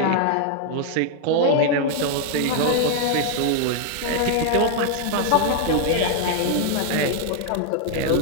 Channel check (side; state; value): both; different; correlation 0.00